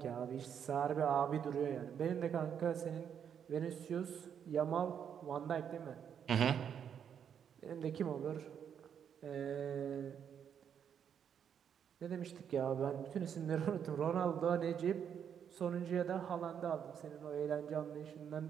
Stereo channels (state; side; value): quieter; left; 8.2 dB